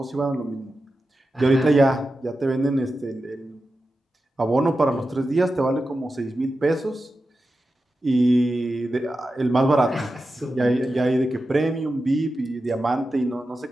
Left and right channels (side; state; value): both; normal; correlation 0.92